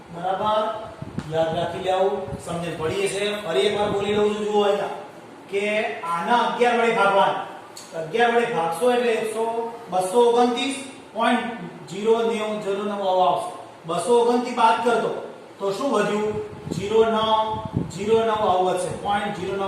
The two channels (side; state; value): both; identical; correlation 1.00